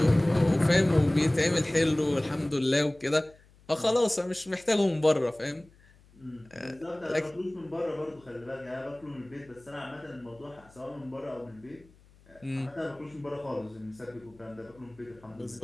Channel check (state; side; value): noise; left; hum, 27 dB below the sound